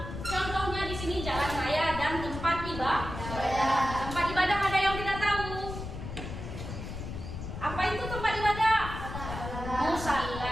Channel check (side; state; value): left; noise; rumble, 8 dB below the sound